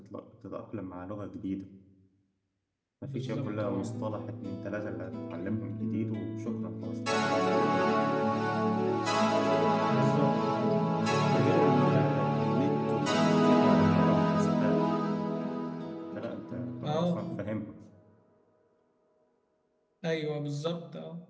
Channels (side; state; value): both; identical; correlation 1.00